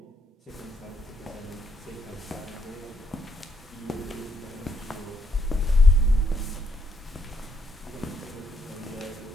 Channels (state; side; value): normal; both; correlation 0.75